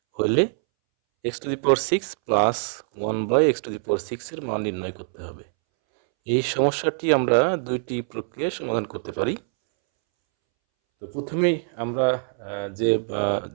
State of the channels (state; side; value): silent; left; 62 dB below the other